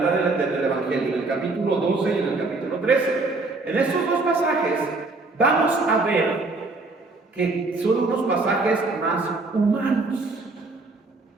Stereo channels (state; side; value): quieter; left; 3.4 dB